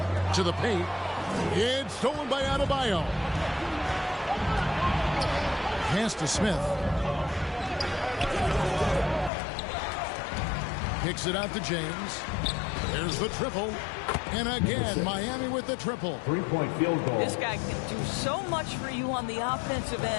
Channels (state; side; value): drops out; right; at 9.3 s